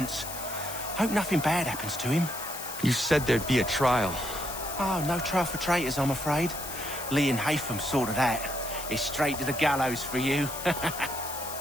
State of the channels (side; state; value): left; noise; hiss, 9 dB below the sound